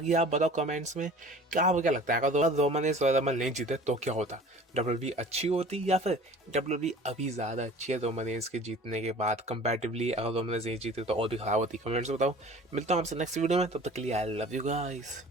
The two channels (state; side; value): normal; both; correlation 0.45